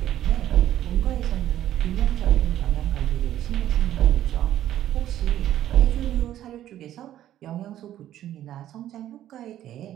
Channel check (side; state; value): left; quieter; 12.2 dB